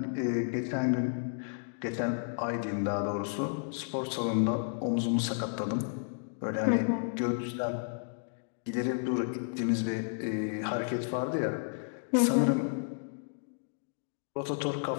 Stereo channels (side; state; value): right; silent; digital silence